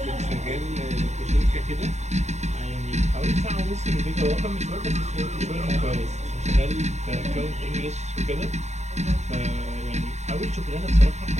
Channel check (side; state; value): left; late; 0.33 ms